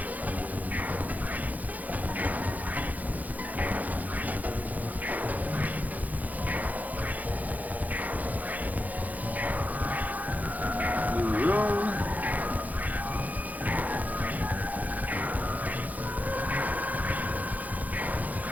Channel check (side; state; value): left; late; 0.079 ms